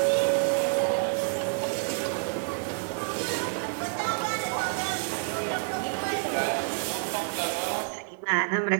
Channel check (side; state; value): left; silent; digital silence